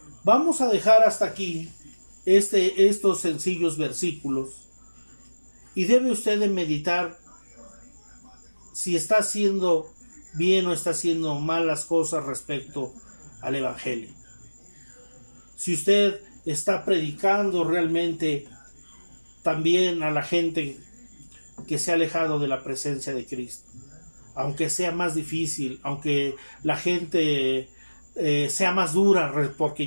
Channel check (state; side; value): inverted; both; correlation -1.00